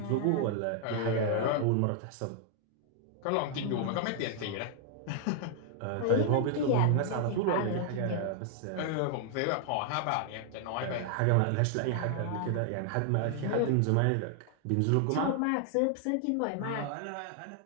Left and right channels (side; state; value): both; different; correlation 0.00